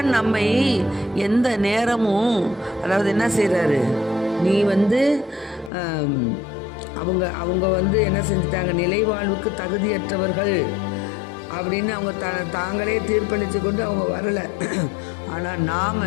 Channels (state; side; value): drops out; right; at 5.7 s